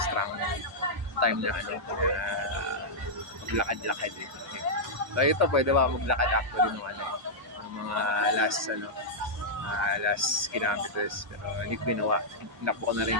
time na maglakad-lakad eh. So ito pwede ba maglakad actually ng mga last kilometers pero hindi ko ginawa. Hinakbo ko na rin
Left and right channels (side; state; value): both; normal; correlation -0.08